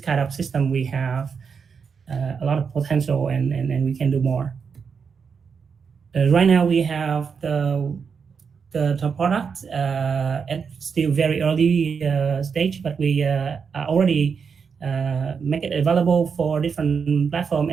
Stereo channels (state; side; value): quieter; left; 6.1 dB